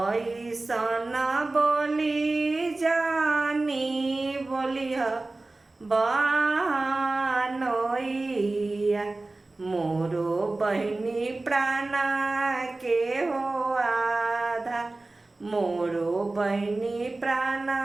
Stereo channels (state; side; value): quieter; left; 3.1 dB